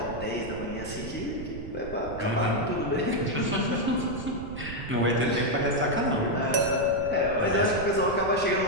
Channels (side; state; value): right; noise; rumble, 11 dB below the sound